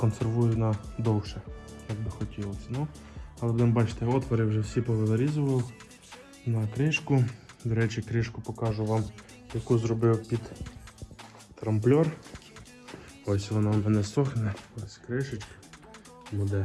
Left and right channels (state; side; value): identical; both; correlation 1.00